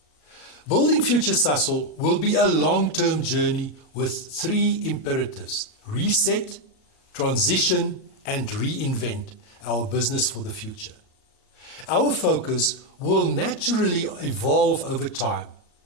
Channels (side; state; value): right; late; 38 ms